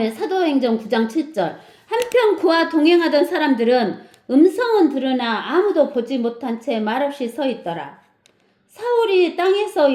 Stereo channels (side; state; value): both; identical; correlation 1.00